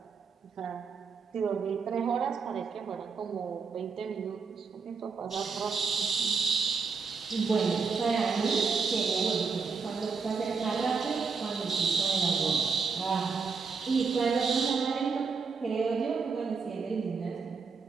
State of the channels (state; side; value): quieter; left; 5.1 dB